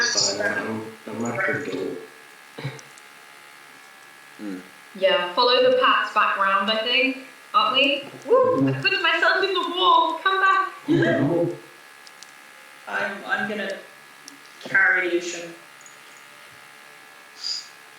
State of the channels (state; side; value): identical; both; correlation 1.00